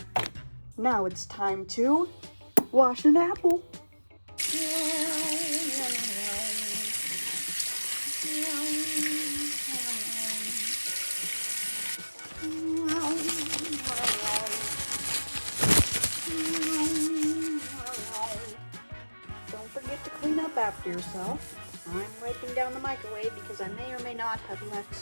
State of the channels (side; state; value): both; inverted; correlation -1.00